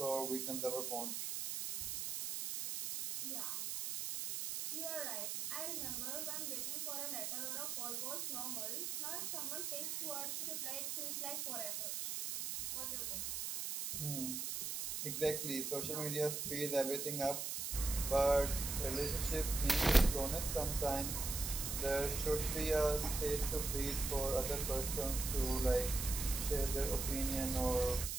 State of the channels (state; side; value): noise; right; hiss, 3 dB below the sound